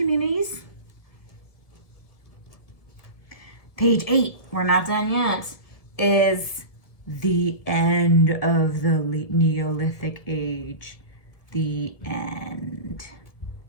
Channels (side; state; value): right; late; 1.8 ms